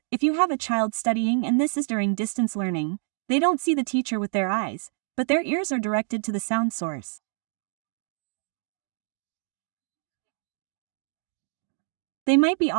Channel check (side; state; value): left; silent; 56 dB below the other